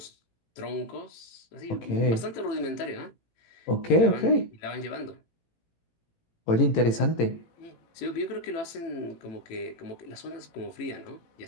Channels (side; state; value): right; late; 18 ms